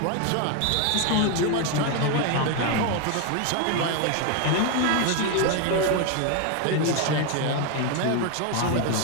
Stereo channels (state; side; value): different; both; correlation 0.01